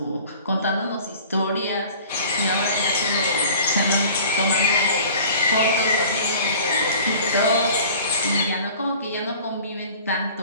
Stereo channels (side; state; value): both; inverted; correlation -0.45